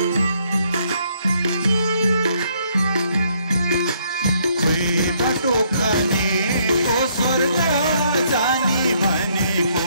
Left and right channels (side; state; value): both; inverted; correlation -0.69